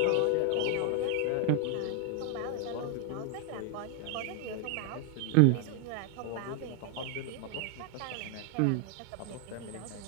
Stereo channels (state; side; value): different; both; correlation 0.00